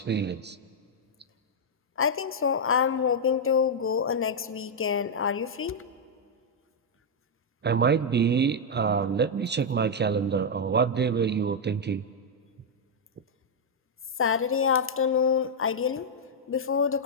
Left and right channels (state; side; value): normal; both; correlation -0.04